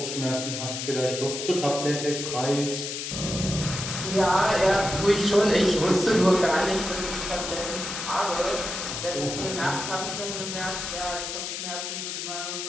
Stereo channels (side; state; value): left; noise; hiss, 5 dB below the sound